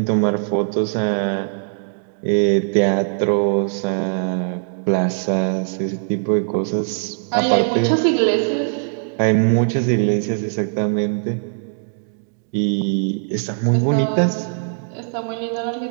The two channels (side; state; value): left; silent; digital silence